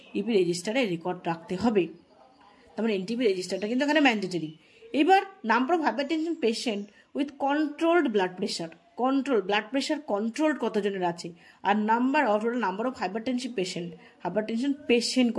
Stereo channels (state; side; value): identical; both; correlation 1.00